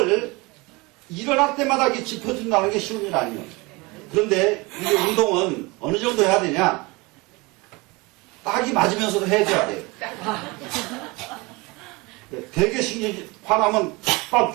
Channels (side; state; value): left; quieter; 25.1 dB